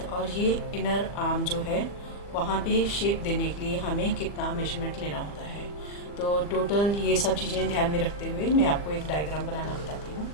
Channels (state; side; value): late; right; 40 ms